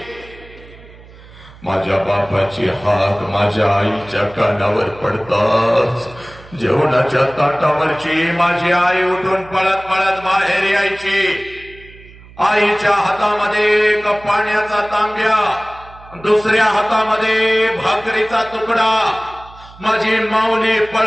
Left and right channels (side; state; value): right; noise; hum, 21 dB below the sound